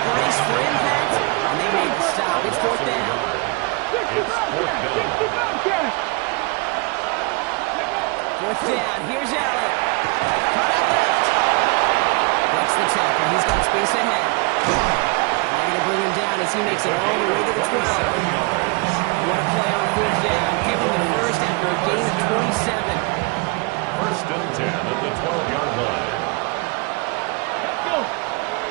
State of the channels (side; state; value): left; quieter; 29.4 dB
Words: braced for impact, and they made the stop. It's 4th down. It's 4th down. 4th down. Here's Allen. Cut out left. Breaks the tackle. He's got space ahead. And they're going to bring him down as he makes it all the way to the 12. What a play on 4th down. Give him the first after a gain of 27. First and 10 at the 12-yard line. Let's go.